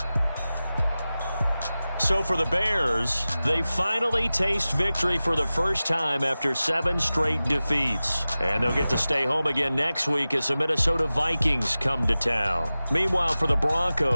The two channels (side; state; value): both; inverted; correlation -0.96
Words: So for the Bears, they finally taste victory for the first time after 7 straight defeats. And they'll get to stay home again next week as the Minnesota Vikings come to town. Meanwhile, for the